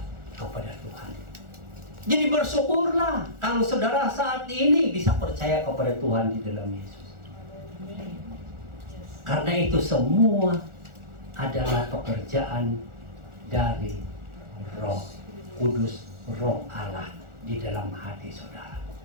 kepada Tuhan. Jadi bersyukurlah kalau saudara saat ini bisa percaya kepada Tuhan di dalam Yesus. Karena itu semua adalah pekerjaan dari Roh Kudus, Roh Allah di dalam hati saudara.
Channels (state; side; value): late; left; 1.4 ms